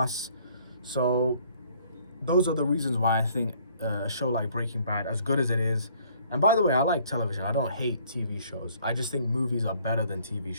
So those are the reasons why I think a show like Breaking Bad, as good as it is, and by the way, I like television. I don't hate TV shows. I just think movies are better than TV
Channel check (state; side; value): inverted; both; correlation -0.60